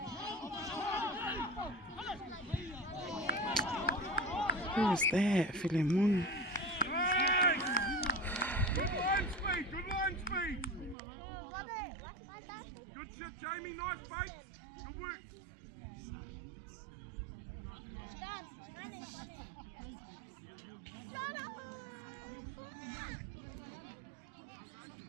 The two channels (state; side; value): drops out; left; at 11.0 s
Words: Who was that? Philemon. Good line speed, good line speed. Good shit, Jamie, nice bait. Good work.